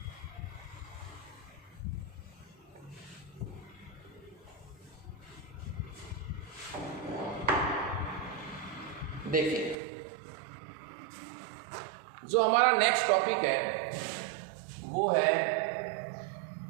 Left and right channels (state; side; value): drops out; left; at 9.8 s